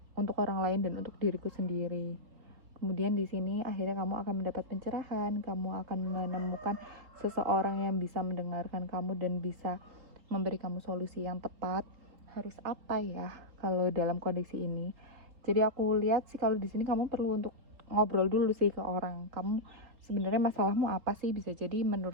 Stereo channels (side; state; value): left; late; 3.9 ms